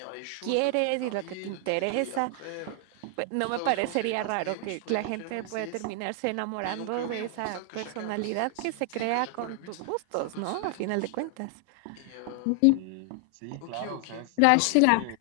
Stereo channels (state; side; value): different; both; correlation 0.00